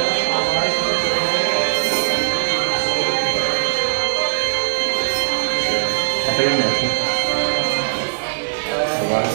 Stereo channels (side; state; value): left; silent; digital silence